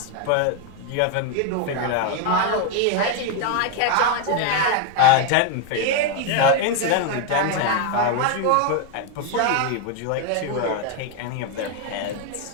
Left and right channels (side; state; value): both; different; correlation 0.01